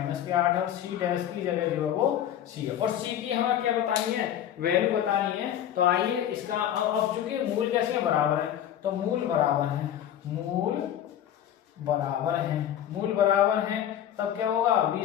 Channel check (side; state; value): right; quieter; 10.7 dB